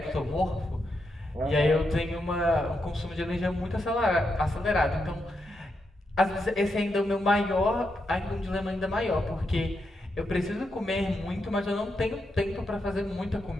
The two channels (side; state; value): both; normal; correlation 0.84